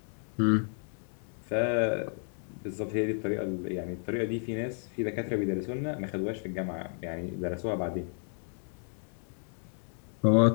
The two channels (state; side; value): silent; right; 56 dB below the other